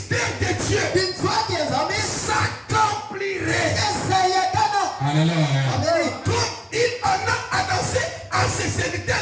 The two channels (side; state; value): both; identical; correlation 1.00